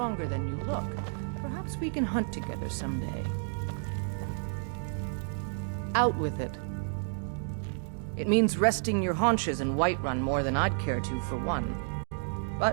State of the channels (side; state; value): left; silent; digital silence